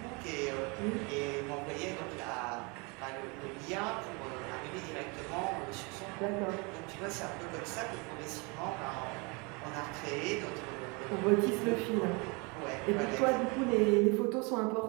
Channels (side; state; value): left; quieter; 29.8 dB